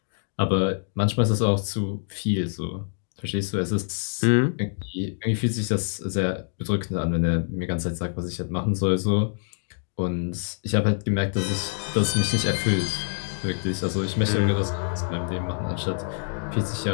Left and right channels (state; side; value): silent; right; digital silence